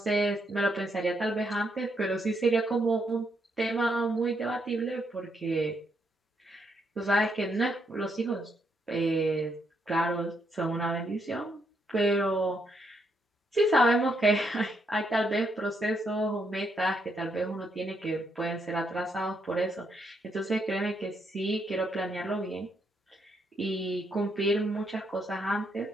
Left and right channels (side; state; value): both; normal; correlation 0.77